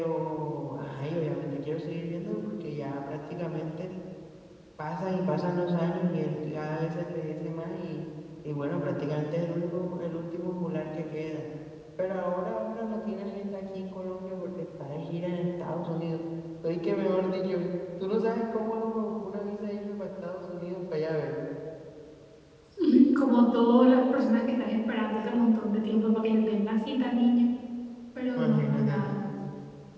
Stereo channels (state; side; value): identical; both; correlation 1.00